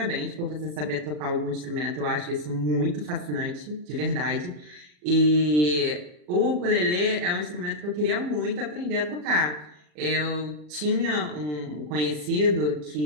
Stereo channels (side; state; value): left; late; 40 ms